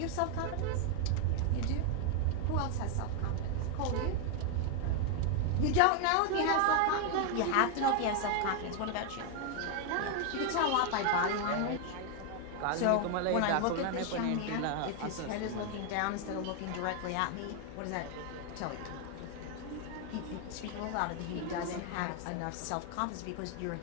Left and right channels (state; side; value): different; both; correlation 0.00